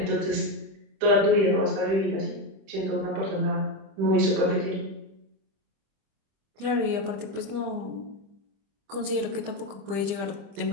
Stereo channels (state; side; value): late; left; 25 ms